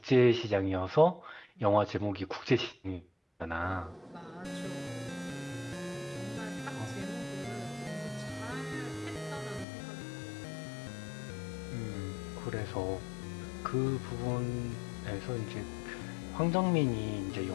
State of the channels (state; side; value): drops out; right; at 9.7 s